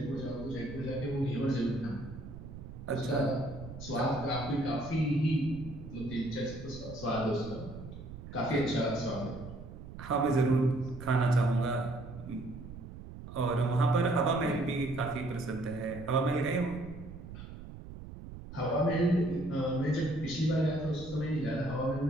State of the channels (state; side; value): noise; right; rumble, 12 dB below the sound